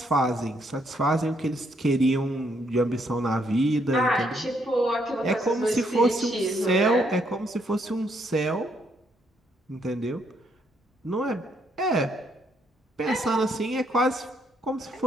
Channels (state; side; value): normal; both; correlation 0.73